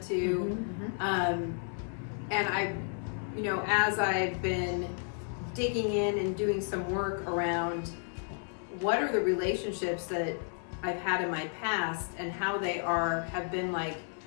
too. And I, as I've been digging in and doing some work around what are the relationships that I've had in my past and how they have been like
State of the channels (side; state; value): right; silent; 55 dB below the other